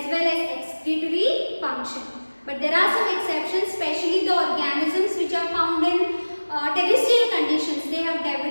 well as excretory function. But there are some exceptions, especially the organisms which are found in terrestrial conditions. They have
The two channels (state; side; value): inverted; both; correlation -1.00